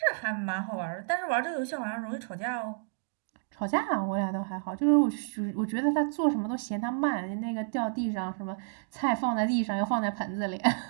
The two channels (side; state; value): left; silent; digital silence